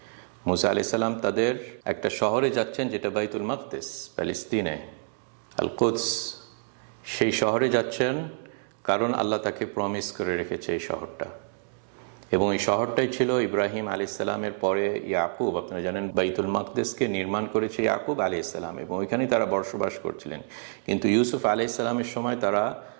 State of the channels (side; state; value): left; silent; digital silence